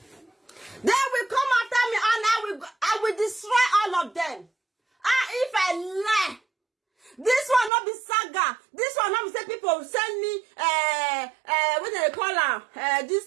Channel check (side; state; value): left; drops out; at 7.7 s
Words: They will come after me and I will destroy all of them. If I lie, this one not be saga. This one not be say people send me what they call her this